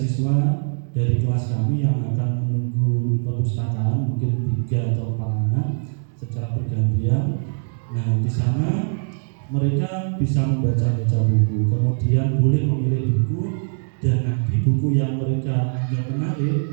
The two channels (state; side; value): silent; left; digital silence